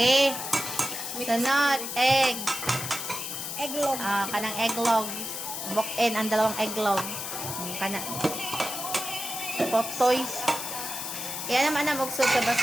Sunod, egg. Egglog. Kanang egglog. Book-in ang dalawang egglog. Kana. Potoy. Yan naman ang magsud sa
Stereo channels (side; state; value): left; noise; hiss, 5 dB below the sound